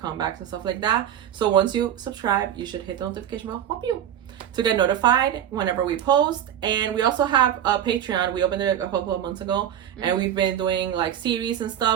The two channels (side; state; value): left; quieter; 10.3 dB